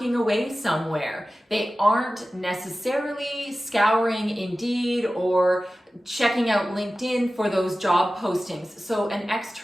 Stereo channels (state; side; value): normal; both; correlation 0.95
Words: away somewhere. They aren't necessarily scouring Indeed or checking out LinkedIn for those job postings. So an